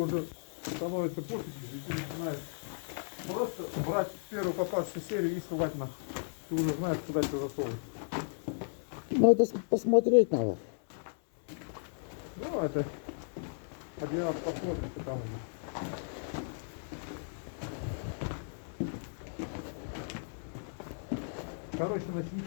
становится пофиг, и ты начинаешь просто брать первую попавшую серию и ссылать на. Ты уже знаешь, куда тебе засовывать. Ну, это посмотреть надо. Ну, это один раз посмотрим, потому что. Короче,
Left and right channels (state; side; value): silent; right; digital silence